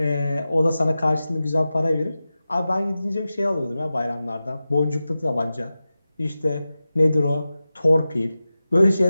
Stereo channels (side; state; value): both; inverted; correlation -0.94